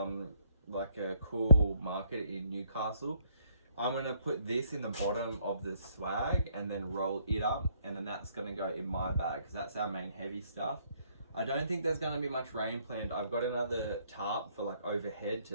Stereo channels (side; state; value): both; inverted; correlation -0.68